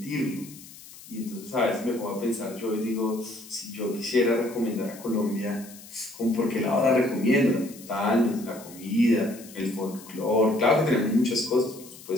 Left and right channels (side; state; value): left; noise; hiss, 18 dB below the sound